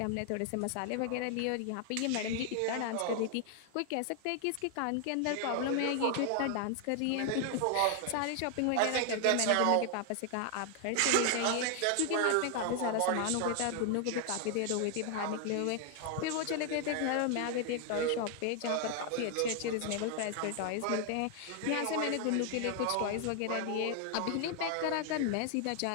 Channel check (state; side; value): different; both; correlation 0.00